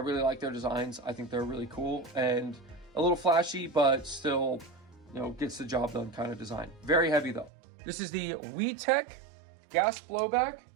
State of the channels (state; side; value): drops out; left; at 7.5 s